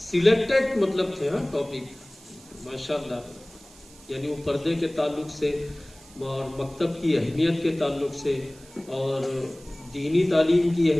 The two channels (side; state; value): right; noise; hiss, 23 dB below the sound